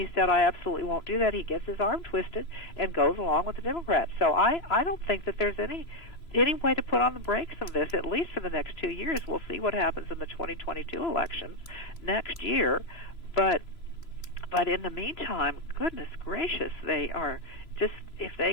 said, I absolutely won't do that, he gets his arm twisted and goes along with the Democrats. So I don't think that there's any way to put on the brakes of this, at least for the next 2 years. We'll see what happens in the 2022 elections next year. But in the meantime, goodness gracious, they are just, if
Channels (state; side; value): late; right; 3.0 ms